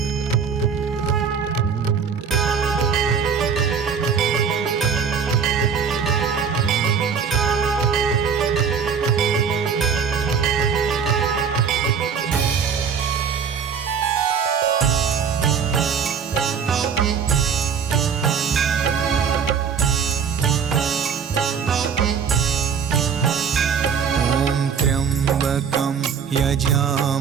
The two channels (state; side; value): quieter; left; 6.6 dB